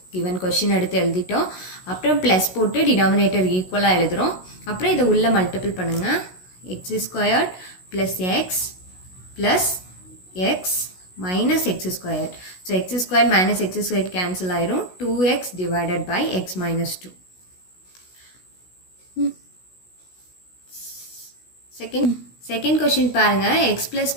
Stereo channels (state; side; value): late; right; 16 ms